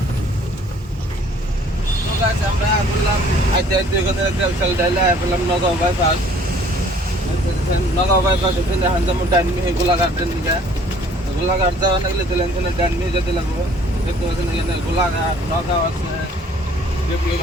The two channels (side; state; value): both; normal; correlation 0.56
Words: আমরা বললাম আইতে আইতে ওখানে একটা বিশাল ডাইলা বললাম নগাঁও বাইপাস। নগাঁও বাইপাস ওখানে এখন যেমন ডাইনমি গোলাঘাটের দিকে, গোলাঘাট যাওয়া লাগলে তাহলে এখানে ডাইনমি যেতে লাগবো। দেখতে পাচ্ছেন এখানে গোলাঘাট, নগাঁও আছে,